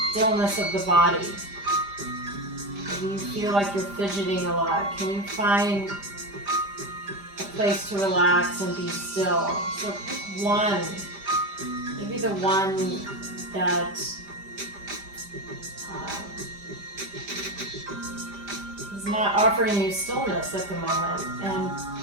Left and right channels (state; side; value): late; left; 5.0 ms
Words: stillness of the body. Maybe you feel like you're fidgeting a lot. Can you find a place to relax and be still? So pick one, maybe the one that is not offering you stillness at the moment,